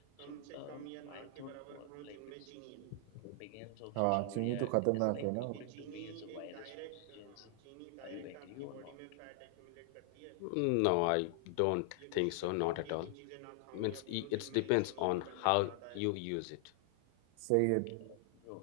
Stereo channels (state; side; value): different; both; correlation 0.00